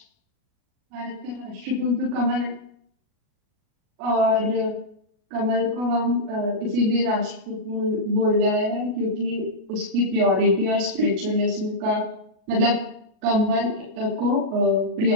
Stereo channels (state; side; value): late; left; 39 ms